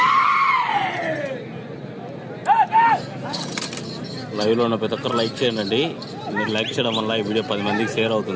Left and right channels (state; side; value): identical; both; correlation 1.00